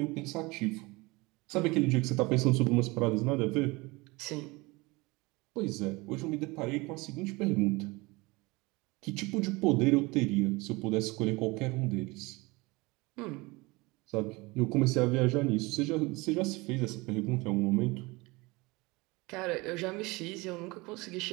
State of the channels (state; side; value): quieter; left; 23.8 dB